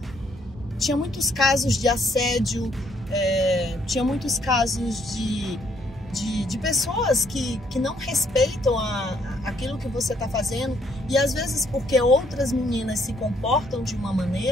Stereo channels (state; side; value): normal; both; correlation 0.69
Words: Tinha muitos casos de assédio, tinha muitos casos de pessoas que não respeitam aquilo que você está fazendo, e às vezes porque outras meninas se comportam de uma